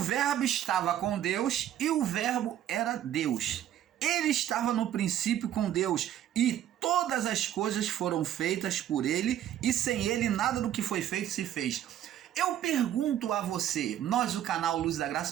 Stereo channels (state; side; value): quieter; left; 11.4 dB